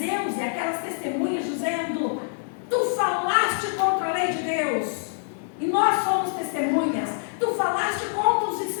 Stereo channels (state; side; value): silent; right; 62 dB below the other